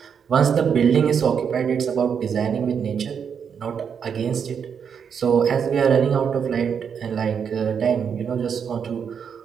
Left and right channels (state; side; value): quieter; left; 7.1 dB